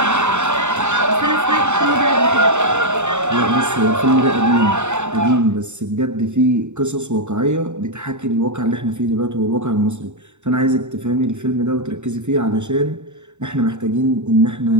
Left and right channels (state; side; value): late; left; 0.84 ms